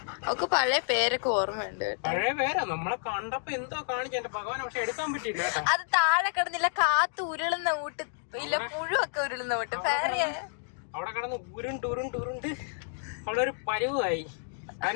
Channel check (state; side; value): silent; right; digital silence